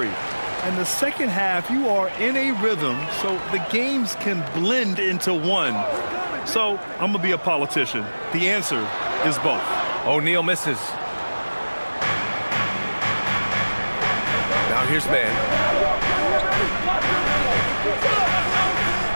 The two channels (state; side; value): inverted; both; correlation -1.00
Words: And the second half, you are in a rhythm, so the games can blend into one. So I'm going to be a politician. The answer is both. O'Neal misses. Now here's Mann.